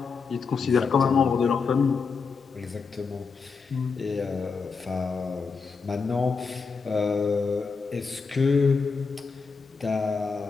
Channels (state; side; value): quieter; right; 5.0 dB